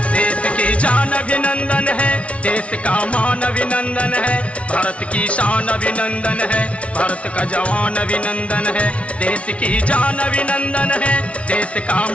देश की जान अभिनंदन है, देश का मान अभिनंदन है, भारत की शान अभिनंदन है, भारत का जवान अभिनंदन है। देश की जान अभिनंदन है, देश का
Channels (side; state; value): right; late; 0.062 ms